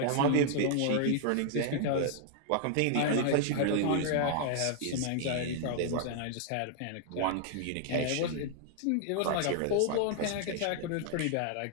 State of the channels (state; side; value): different; both; correlation -0.01